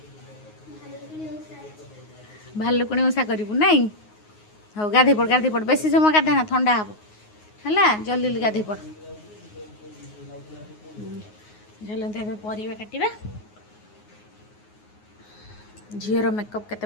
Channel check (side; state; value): right; late; 9.5 ms